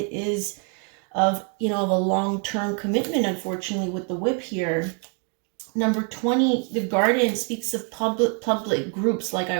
is of a long-term commitment, unfortunately, with the whip here. Number 20, the garden speaks of public groups, like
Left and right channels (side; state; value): left; quieter; 39.4 dB